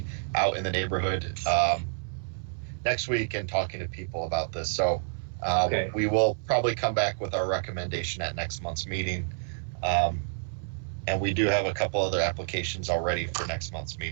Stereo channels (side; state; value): left; silent; 59 dB below the other